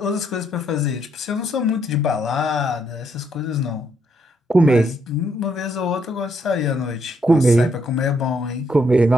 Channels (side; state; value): both; normal; correlation 0.74